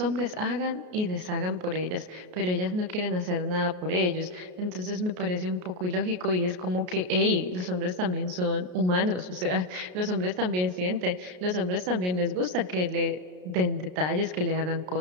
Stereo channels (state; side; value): late; left; 33 ms